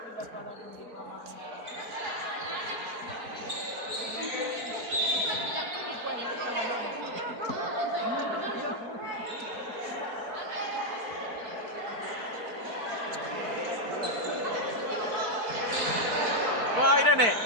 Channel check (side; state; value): left; late; 4.4 ms